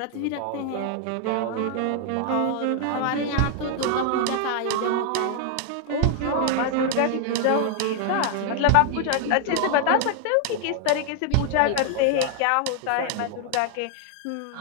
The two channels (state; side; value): different; both; correlation 0.00